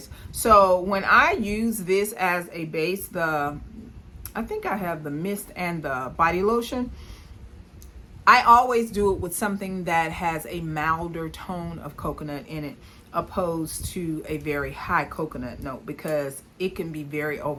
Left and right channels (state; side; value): identical; both; correlation 1.00